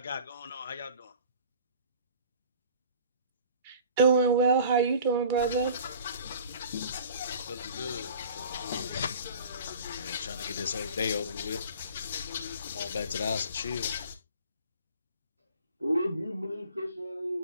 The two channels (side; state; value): both; inverted; correlation -0.45